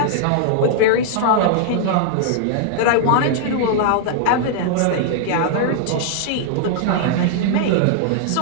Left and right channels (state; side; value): different; both; correlation -0.01